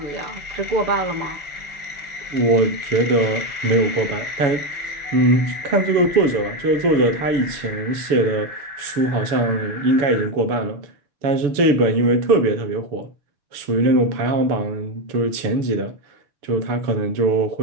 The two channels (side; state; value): left; late; 6.9 ms